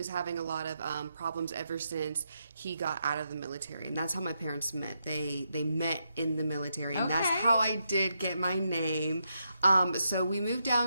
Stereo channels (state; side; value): inverted; both; correlation -0.82